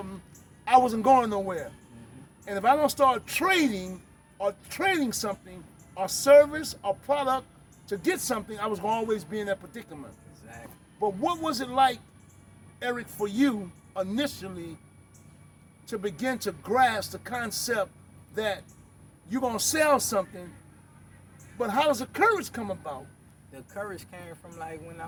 I wasn't going nowhere. And if I don't start trading or trading something or service or product to get something, I was going to always be in that predicament. Exactly. But what was it like, Eric, for you initially to begin to grasp the concept that you're going to sell something, but how does the courage come about? The courage came from like when I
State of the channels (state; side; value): identical; both; correlation 1.00